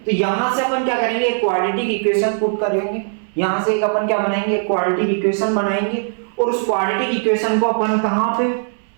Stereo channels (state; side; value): silent; left; digital silence